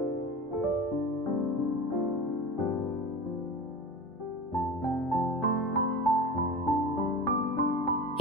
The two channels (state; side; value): normal; both; correlation 0.31